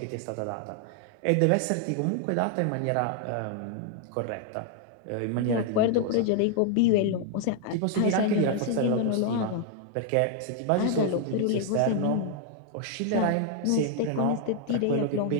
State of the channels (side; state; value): both; different; correlation 0.00